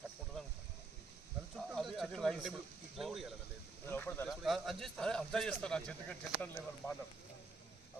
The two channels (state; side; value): quieter; left; 3.7 dB